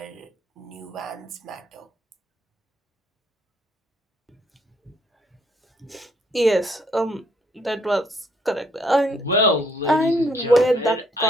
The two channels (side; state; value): both; normal; correlation 0.68